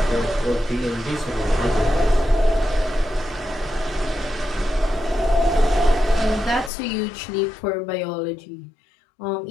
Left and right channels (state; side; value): drops out; right; at 6.7 s